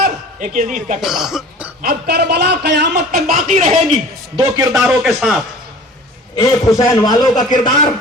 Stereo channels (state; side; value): normal; both; correlation 0.43